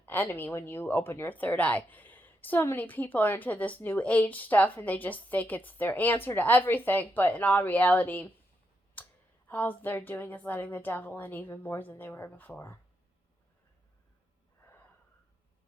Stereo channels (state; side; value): normal; both; correlation 0.82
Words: enemy when you open your third eye. So many people are into this new age stuff, and they just think it's their answer to everything, but in all reality, all they're doing is letting the devil in even more than they were before.